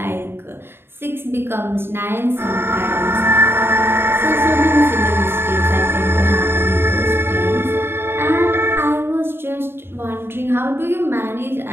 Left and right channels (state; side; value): late; left; 0.11 ms